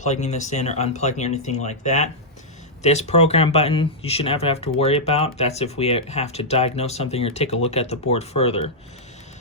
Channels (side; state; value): both; normal; correlation -0.08